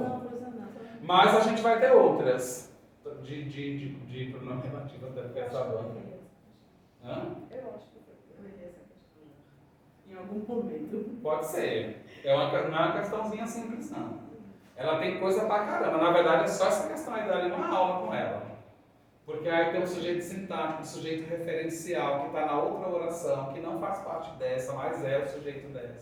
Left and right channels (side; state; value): both; identical; correlation 1.00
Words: Não, professor, não. Mas a gente vai ter outras de pronome relativo até porque essa banda. Hã? Eu acho que eu errei essa questão. Em algum momento. Pode ser. Não é uma questãozinha simples, não. Ela tem coisa pra caramba. Na verdade, é só essa questão aí dali uma aula com ela. Porque aí tem o sujeito sintático, o sujeito referencial, que está na outra oração, que não faz parte dessa, mas é o sujeito